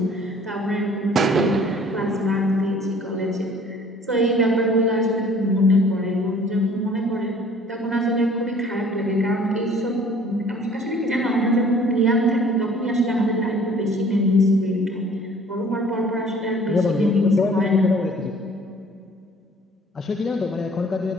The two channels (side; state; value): both; normal; correlation 0.53